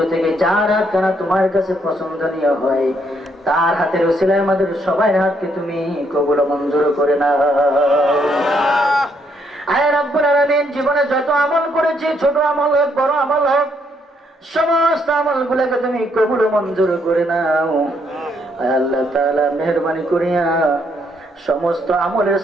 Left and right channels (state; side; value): normal; both; correlation 0.72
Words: থেকে যার হাত কানা তোমার কাছে পছন্দনীয় হয় তার হাতের উসিলায় আমাদের সবার হাতকে তুমি কবুল ও মঞ্জুর করে নাও আয় রাব্বুল আলামিন জীবনে যত আমল করেছি ছোট আমল হোক বড় আমল হোক সমস্ত আমলগুলোকে তুমি কবুল ও মঞ্জুর করে নাও আয় আল্লাহ তাআলা মেহেরবানি করিয়া সমস্ত আমলের